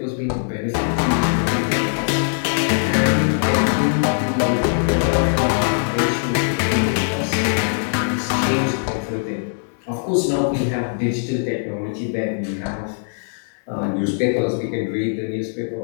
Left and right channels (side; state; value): right; silent; digital silence